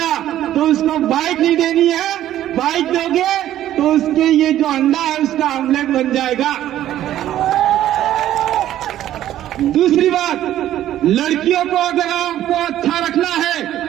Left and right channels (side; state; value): left; quieter; 12.5 dB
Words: तो उसको बाइक नहीं देनी है, बाइक दोगे तो उसके ये जो अंडा है उसका आमलेट बन जाएगा। दूसरी बात, लड़कियों को अगर आपको अच्छा रखना है,